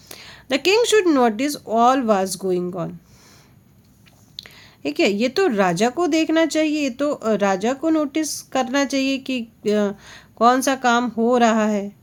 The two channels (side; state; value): both; identical; correlation 1.00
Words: The king should notice all was going on, ठीक है, ये तो राजा को देखना चाहिए, ये तो राजा को नोटिस करना चाहिए कि कौन सा काम हो रहा है।